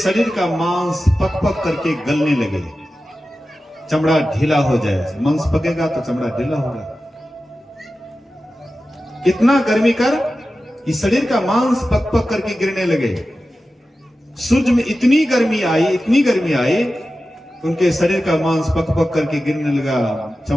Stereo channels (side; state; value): both; normal; correlation 0.93